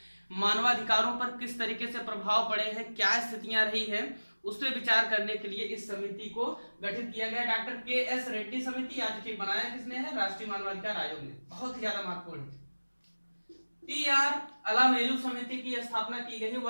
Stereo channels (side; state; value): both; inverted; correlation -1.00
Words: मानवाधिकारों पर किस तरीके से प्रभाव पड़े हैं, क्या स्थितियां रही है, उस पर विचार करने के लिए इस समिति को गठित किया गया। Doctor KS. रेड्डी समिति आज बनाया किसने है? राष्ट्रीय मानवाधिकार आयोग ने। बहुत ही ज्यादा महत्वपूर्ण है। TR अलामेलू समिति की स्थापना की गई है।